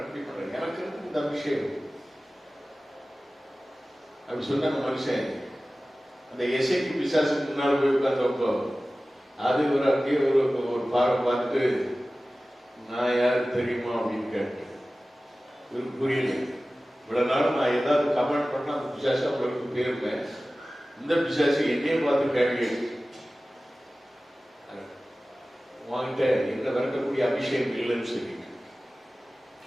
அப்படி பண்றேன், எனக்கு இருக்கு இந்த அபிஷேகம் அப்படி சொன்ன மனுஷன் அந்த எசைக்கு பிசாசுக்கு முன்னாடி போய் உட்கார்ந்தப்போ அது ஒரு அப்படியே ஒரு பார்வை பார்த்துட்டு, நான் யாரு தெரியுமா அப்படின்னு கேட்டேன். இவருக்கு புரியல. இவ்வளவு நாள் நான் ஏதாவது கமெண்ட் பண்ணா அந்த பிசாசு அவங்களுக்கு போயிருப்பேன். இந்த பிசாசு என்னையே பார்த்து கேள்வி வாங்கிட்ட என்ன விளக்கக்கூடிய அபிஷேகம் இல்லைன்னு சொல்லி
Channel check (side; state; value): both; normal; correlation 0.96